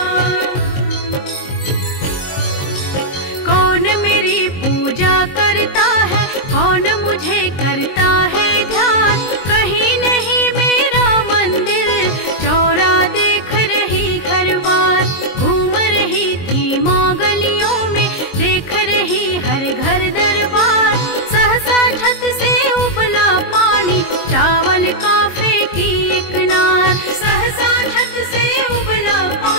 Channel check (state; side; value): late; right; 22 ms